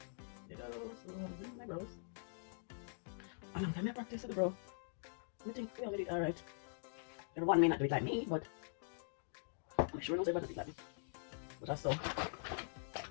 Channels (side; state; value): right; silent; digital silence